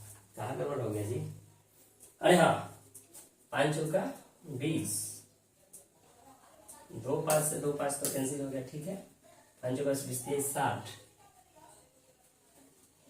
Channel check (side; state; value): both; identical; correlation 1.00